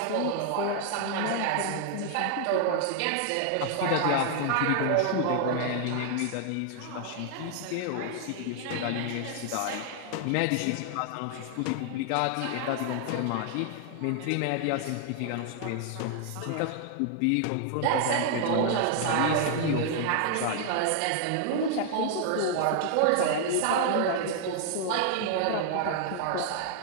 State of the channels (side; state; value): both; different; correlation 0.00